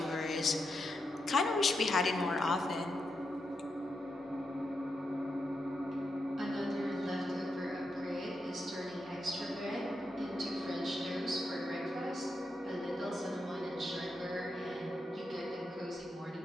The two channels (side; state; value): both; normal; correlation 0.85